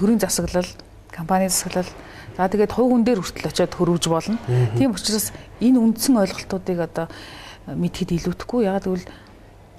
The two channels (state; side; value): identical; both; correlation 1.00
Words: засаглал, компани засаглал, за тэгээд хувь хүн дээр хүртэл очиод хөрвж болно. Тийм учраас энэ үндсэн ойлголтуудыг одоо мэдхэд илүүдэхгүй. Ягаад гэвэл